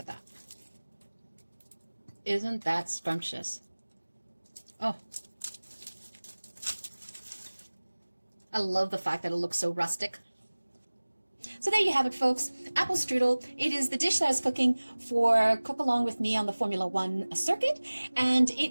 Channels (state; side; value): inverted; both; correlation -1.00